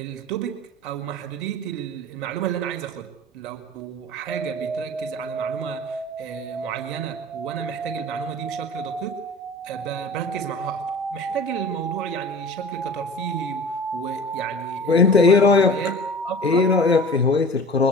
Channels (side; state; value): both; normal; correlation 0.40